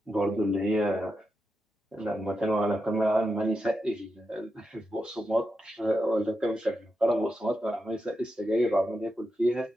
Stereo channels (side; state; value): both; normal; correlation 0.87